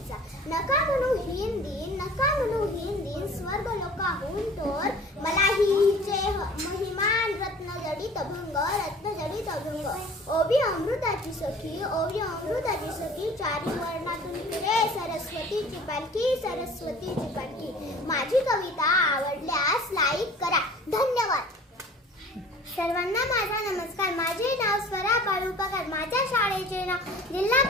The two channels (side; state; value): both; normal; correlation 0.46